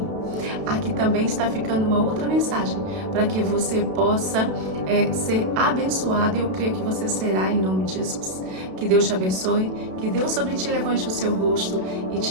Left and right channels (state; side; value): late; left; 32 ms